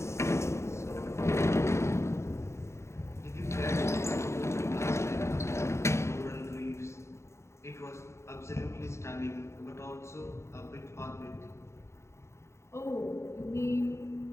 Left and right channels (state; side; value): late; right; 0.13 ms